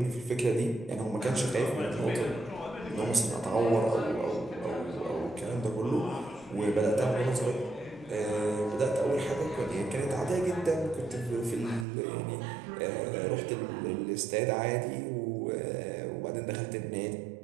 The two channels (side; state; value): left; drops out; at 11.9 s